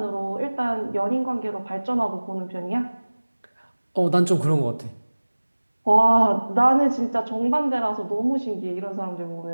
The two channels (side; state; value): both; inverted; correlation -1.00